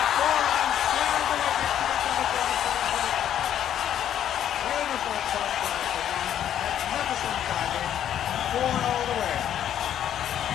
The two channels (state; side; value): quieter; right; 10.4 dB